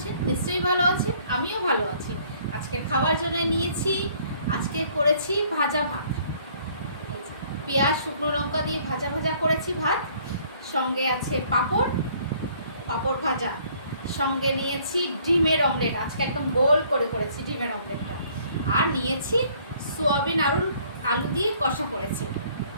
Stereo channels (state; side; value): inverted; both; correlation -0.60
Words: নিশ্চয়ই ভালো আছেন, আমিও ভালো আছি। আজকে খাওয়ার জন্য নিয়েছি, আজকে করেছি ভাজা ভাত। পেঁয়াজ শুকনো লঙ্কা দিয়ে ভাজা ভাজা করেছি ভাত, সঙ্গে আছে পাঁপড়, পাঁপড় ভাজা, সঙ্গে নিয়েছি ডিমের অমলেট। আজকে একদম গোল করে করেছি ডিমের অমলেটটা। আর নিয়েছি সোয়াবিন আলু দিয়ে কষা করেছি,